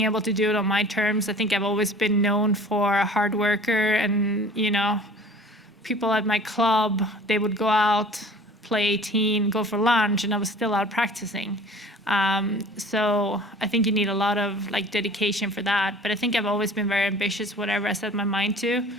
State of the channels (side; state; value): both; normal; correlation 0.46